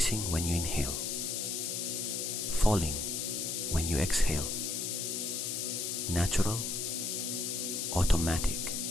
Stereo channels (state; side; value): noise; left; hiss, 1 dB below the sound